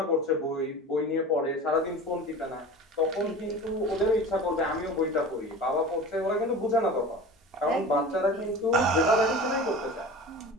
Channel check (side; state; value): both; normal; correlation 0.36